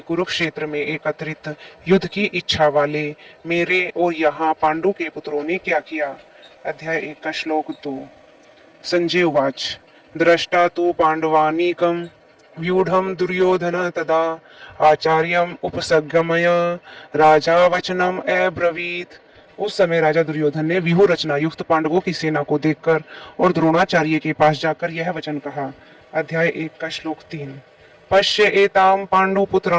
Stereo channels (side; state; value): both; identical; correlation 1.00